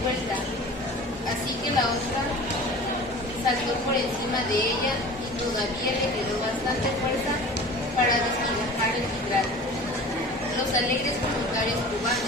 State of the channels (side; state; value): both; normal; correlation 0.40